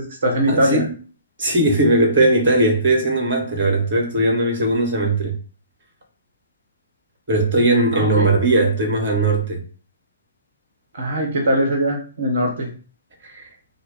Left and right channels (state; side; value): inverted; both; correlation -0.50